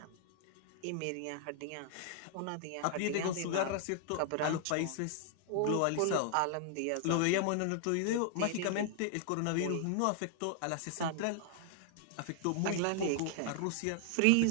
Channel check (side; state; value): both; different; correlation 0.00